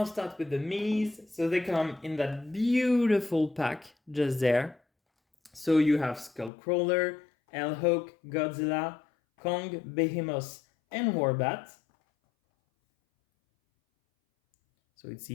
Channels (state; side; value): drops out; right; at 6.5 s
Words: start with the minis. So they come in that beautiful pack just there. So you have Skullcrawler, Hawk, Godzilla, Kong, Behemoth, and Warbat. So it's